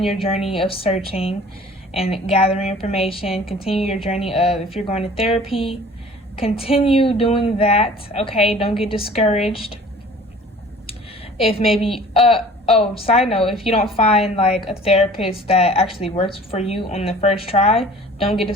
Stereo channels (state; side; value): normal; both; correlation 0.47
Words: your journey of searching and gathering information. Continue your journey of, if you're going to therapy, continue doing that. Okay, don't get discouraged. If maybe, side note, if you don't find like a therapist that actually works for you on the first try, don't get